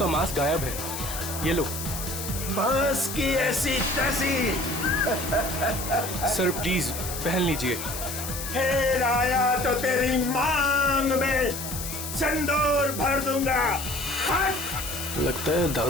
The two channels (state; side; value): noise; left; hiss, 7 dB below the sound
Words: mask गायब है, ये लो। बस की ऐसी तैसी। सर प्लीज पहन लीजिए। फिर आया तो तेरी मांग में सिंदूर भर दूंगा। हट! लगता है